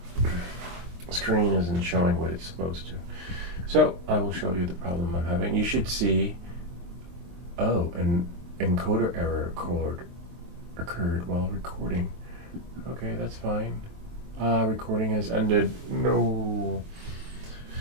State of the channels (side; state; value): left; late; 23 ms